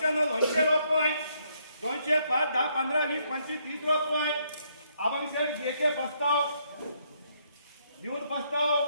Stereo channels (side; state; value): both; inverted; correlation -0.72